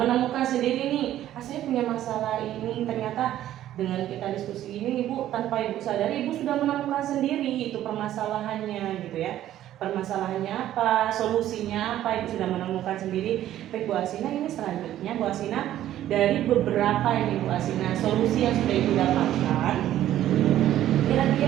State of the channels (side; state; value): left; quieter; 12.6 dB